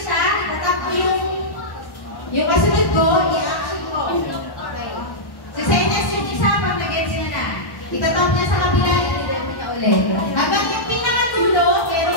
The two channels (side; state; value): right; late; 1.1 ms